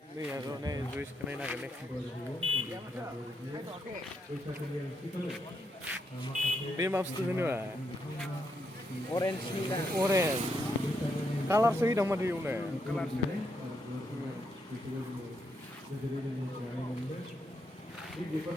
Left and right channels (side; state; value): both; normal; correlation 0.79